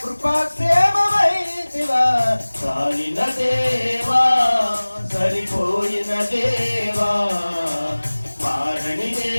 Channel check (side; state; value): both; inverted; correlation -1.00